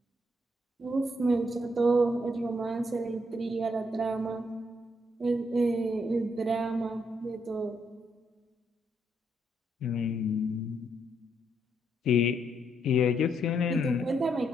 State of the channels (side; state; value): both; normal; correlation 0.76